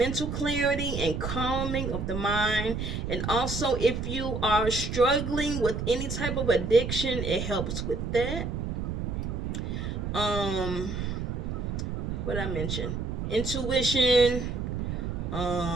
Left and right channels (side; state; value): right; noise; rumble, 3 dB below the sound